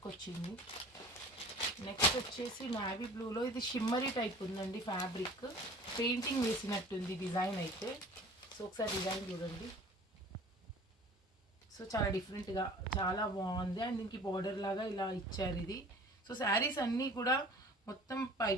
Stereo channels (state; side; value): normal; both; correlation 0.45